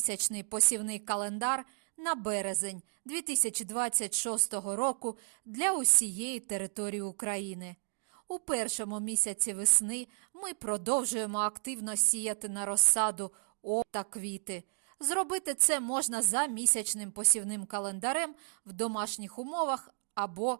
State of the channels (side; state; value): left; silent; digital silence